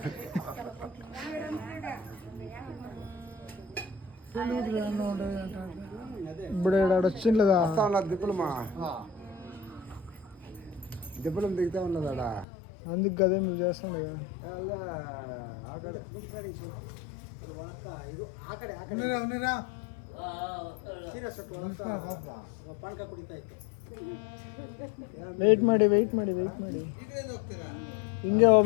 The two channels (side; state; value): right; drops out; at 12.5 s